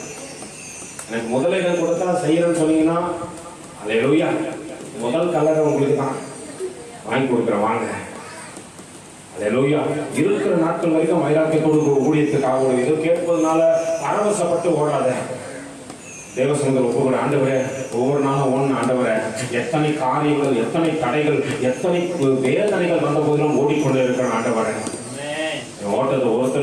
எனக்கு முதல்ல கொடுத்தா செய்யறேன்னு சொன்னீங்கன்னா அல்லேலூயா. முதல் கலரை உங்களுக்கு தான் வாங்கி கொடுக்குறேன் வாங்க. அல்லேலூயா. இருக்கிற நாட்கள் வரைக்கும் வைராக்கிய கொடுக்க ஊழியத்துக்காக இது கேட்பதனால பரவசப்பட்டு ஓடாத. தேவசங்கர் ஒவ்வொரு ஆண்டவரே ஒவ்வொரு நாளும் ஒன்று ஆண்டவரே. எத்தனை காரியங்கள் எத்தனை தடைகள் எத்தனை வேதனைகள் வந்த போதிலும் ஓடிக்கொண்டே இருக்கிற ஆண்டவரே. ஓட்டத்தை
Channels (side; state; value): both; identical; correlation 1.00